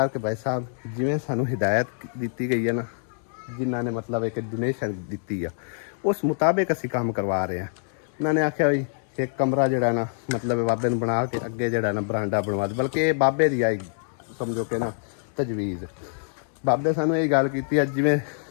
ਭਾਈ ਸਾਹਿਬ ਜਿਵੇਂ ਸਾਨੂੰ ਹਿਦਾਇਤ ਦਿੱਤੀ ਗਈ ਹੈ ਨਾ, ਜਿਨ੍ਹਾਂ ਨੇ ਮਤਲਬ ਇੱਕ ਡੋਨੇਸ਼ਨ ਦਿੱਤੀ ਆ, ਉਸ ਮੁਤਾਬਿਕ ਅਸੀਂ ਕੰਮ ਕਰਵਾ ਰਹੇ ਹਾਂ। ਉਹਨਾਂ ਨੇ ਆਖਿਆ ਵੀ ਇੱਕ ਕਮਰਾ ਜਿਹੜਾ ਨਾ ਮਤਲਬ ਬਾਬੇ ਨੂੰ ਬਣਾ ਕੇ ਅੱਗੇ ਜਿਹੜਾ ਨਾ ਬਰਾਂਡਾ ਬਣਵਾ ਦੇ, ਬਲਕਿ ਇਹ ਬਾਬੇ ਦੀ ਆਈ ਸਮਝੋ ਕਿ ਨਾ ਤਜਵੀਜ਼। ਬਾਬੇ ਸਾਨੂੰ ਇਹ ਗੱਲ ਕੀਤੀ ਆ, ਜਿਵੇਂ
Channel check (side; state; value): right; silent; 61 dB below the other